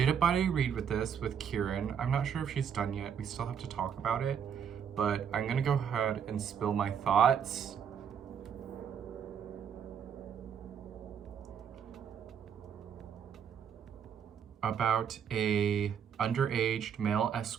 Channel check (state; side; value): quieter; left; 7.9 dB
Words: a buddy read with this with Kieran? I'm not sure if she's done yet. We still have to talk about it. But I'm gonna go ahead and spill my thoughts. About a underage male